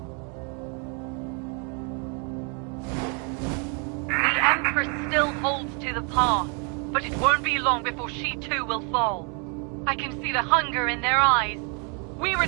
The Empress still holds to the path, but it won't be long before she too will fall. I can see the hunger in their eyes. We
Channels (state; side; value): quieter; left; 37.0 dB